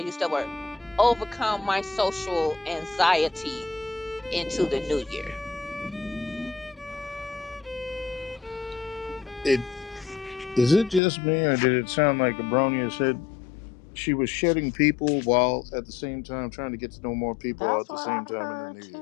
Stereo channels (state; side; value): drops out; right; at 11.0 s